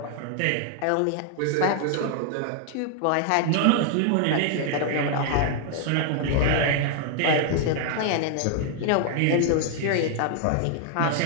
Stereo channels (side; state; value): both; different; correlation -0.01